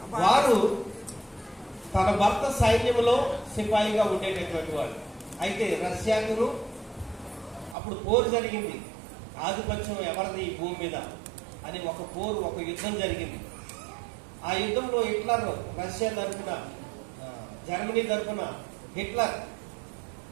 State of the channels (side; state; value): left; drops out; at 7.8 s